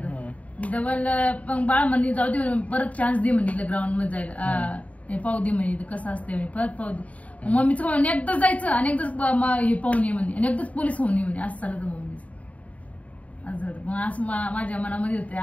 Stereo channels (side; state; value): right; late; 0.068 ms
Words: डबल पण बाळ म्हणे जाऊ दे, परत चान्स दे म्हणजे ग्राउंड मध्ये जायला, पाहू दे म्हणे कसं असते, परत पाहू दे. मम्मीचं म्हणे एकदाच जायचं आणि एकदाच हे पाहून ये म्हणे आणि एकदाच पोलीस होऊन ये म्हणे. असं चालत मम्मीच. असं झालं. मग असं माझ्या मनामध्ये होते